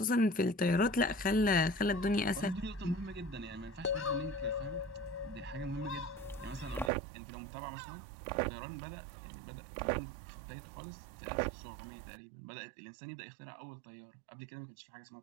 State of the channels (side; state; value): left; drops out; at 6.9 s